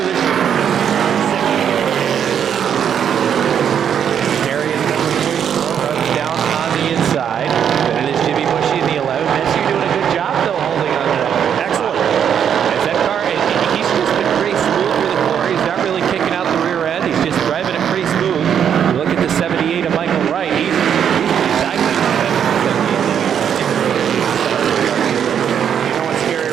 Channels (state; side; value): quieter; left; 8.5 dB